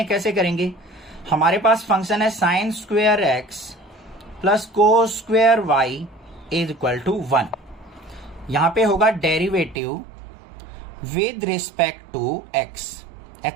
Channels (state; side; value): drops out; left; at 9.8 s